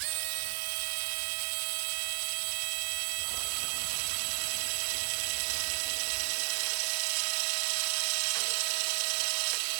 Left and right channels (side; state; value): left; silent; 56 dB below the other